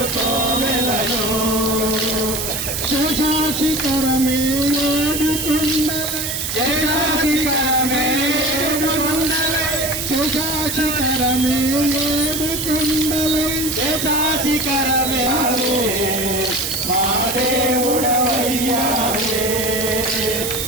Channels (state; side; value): noise; right; hiss, 3 dB below the sound